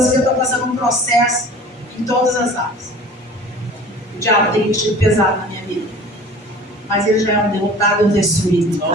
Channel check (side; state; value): both; normal; correlation 0.44